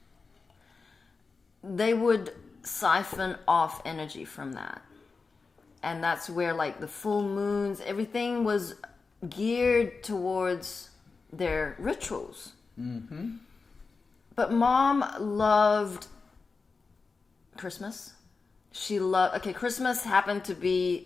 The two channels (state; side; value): quieter; right; 4.4 dB